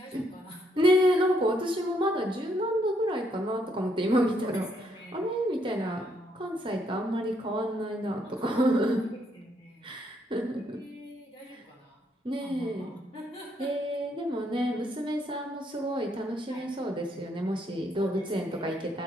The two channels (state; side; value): normal; both; correlation 0.73